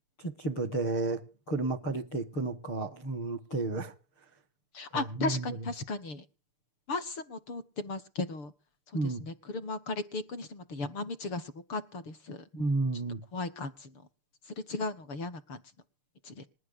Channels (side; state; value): right; late; 6.7 ms